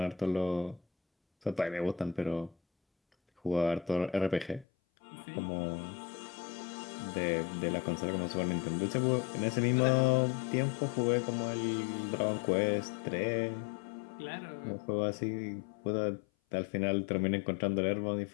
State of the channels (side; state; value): right; drops out; at 4.7 s